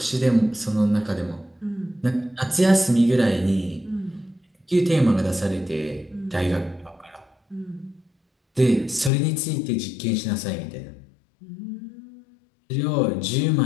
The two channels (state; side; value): drops out; right; at 9.1 s